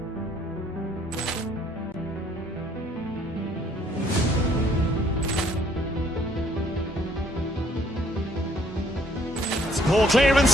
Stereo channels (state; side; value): normal; both; correlation 0.64